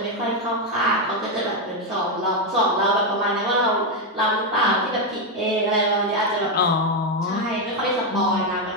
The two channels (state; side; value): normal; both; correlation 0.05